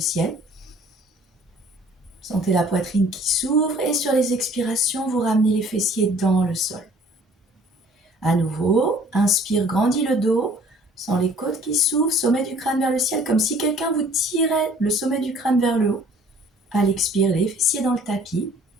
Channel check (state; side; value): normal; both; correlation 0.54